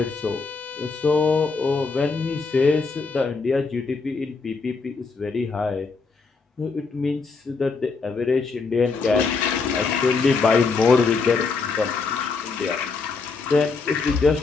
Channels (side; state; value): right; quieter; 4.5 dB